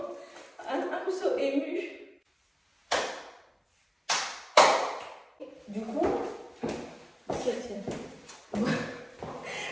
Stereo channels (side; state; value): both; identical; correlation 1.00